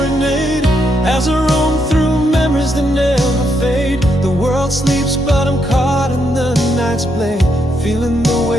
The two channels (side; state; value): both; normal; correlation 0.78